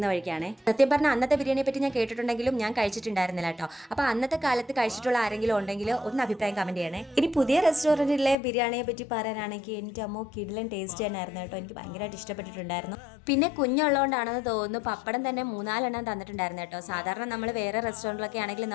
വഴിക്കാണ്. സത്യം പറഞ്ഞാൽ അന്നത്തെ ബിരിയാണിയെ പറ്റി ഞാൻ കേട്ടിട്ടുണ്ടെങ്കിലും ഞാൻ കഴിച്ചിട്ടുണ്ടായിരുന്നില്ല കേട്ടോ. അപ്പോൾ അന്നത്തെ കാലത്ത് കഴിച്ചിട്ടുള്ള ആരെങ്കിലും ഉണ്ടെങ്കിൽ ഒന്ന് അഭിപ്രായം കമൻറ്റ് ചെയ്യണേ. ഇനി പുതിയ റെസ്റ്റോറൻറ്റിലെ ബിരിയാണിയെ പറ്റി പറയാനാണെങ്കിൽ എൻ്റെ അമ്മോ കിടിലൻ ടേസ്റ്റ് തന്നെയായിരുന്നു കേട്ടോ. എനിക്ക് ഭയങ്കരമായിട്ട് ഇഷ്ടപ്പെട്ടിട്ടുണ്ടായിരുന്നു. പിന്നെ കുഞ്ഞുള്ളതുകൊണ്ടാണെന്ന് തോന്നുന്നു പപ്പടം തന്നെ 3-4 തന്നിട്ടുണ്ടായിരുന്നു കേട്ടോ. സാധാരണ നമ്മൾ വേറെ റെസ്റ്റോറൻറ്റിലൊക്കെ ആണെങ്കിൽ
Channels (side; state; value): right; drops out; at 8.3 s